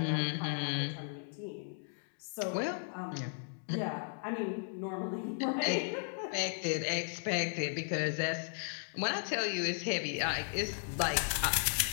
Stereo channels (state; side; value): silent; right; 54 dB below the other